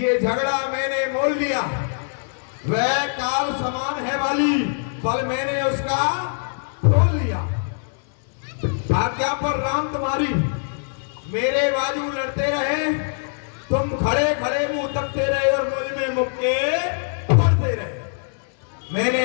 झगड़ा मैंने मोल लिया। वह काल समान है वाली, पल मैंने उसका तोल लिया। आज्ञा पर राम तुम्हारी, मेरे बाजू लड़ते रहे, तुम खड़े खड़े मुंह तकते रहे और मुझ में मुक्के पड़ते रहे। मैंने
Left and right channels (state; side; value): silent; right; 64 dB below the other